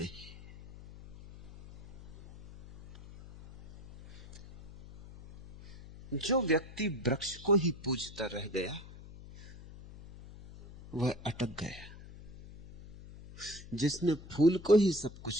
है। जो व्यक्ति वृक्ष को ही पूजता रह गया वह अटक गया। जिसने फूल को ही सब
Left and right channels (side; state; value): left; noise; hum, 17 dB below the sound